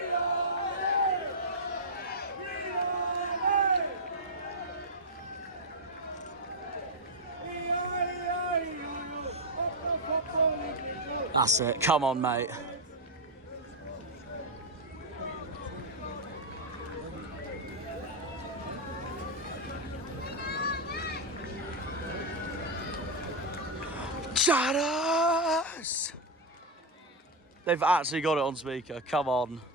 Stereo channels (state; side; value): normal; both; correlation 0.02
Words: That's it. Come on, mate. Janners! They've actually got it on speaker. Come on.